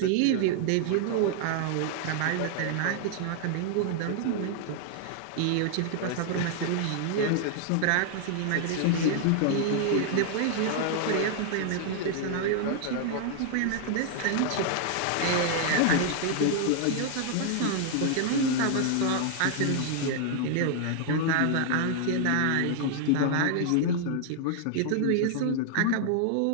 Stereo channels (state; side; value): different; both; correlation 0.00